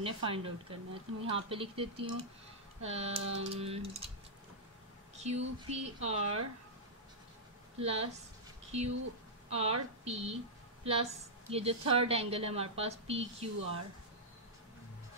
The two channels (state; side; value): normal; both; correlation -0.10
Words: फाइंड आउट करना है। तो मैं यहाँ पे लिख देती हूँ Q P are plus Q R P plus ये जो थर्ड एंगल है हमारे पास पी क्यू आर,